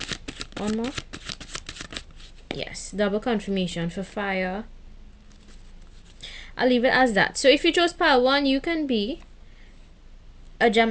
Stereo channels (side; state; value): both; identical; correlation 1.00